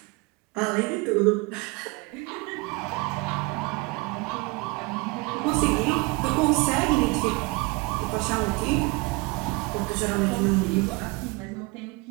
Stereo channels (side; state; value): left; quieter; 26.0 dB